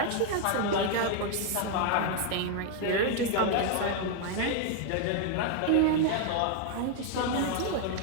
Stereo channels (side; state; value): both; different; correlation 0.00